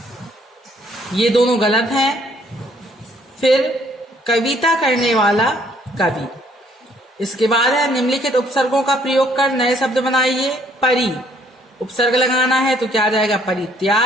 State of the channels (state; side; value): normal; both; correlation 0.64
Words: ये दोनों गलत हैं। फिर कविता करने वाला कवि। इसके बाद है निम्नलिखित उपसर्गों का प्रयोग कर नए शब्द बनाइए। परि, उपसर्ग लगाना है तो क्या आ जाएगा?